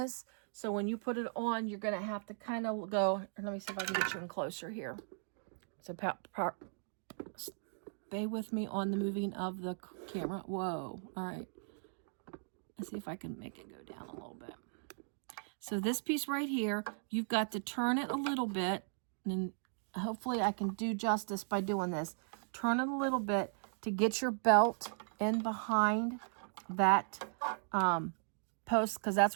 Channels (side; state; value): left; silent; digital silence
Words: So when you put it on, you're gonna have to kind of go. Let me see if I can get you in closer here. So stay with me on the moving of the camera. Whoa, all right. Let's see if I can make it go down a little bit. So this piece right here, you've got to turn it a little bit, and hopefully I can do justice by doing this. Turn it a little bit to get your belt in behind that post, because